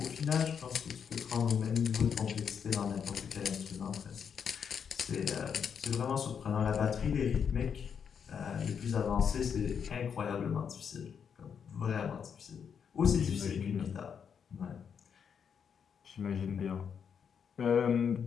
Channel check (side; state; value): right; quieter; 7.2 dB